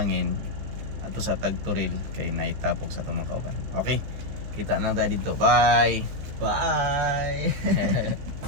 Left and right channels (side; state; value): left; late; 15 ms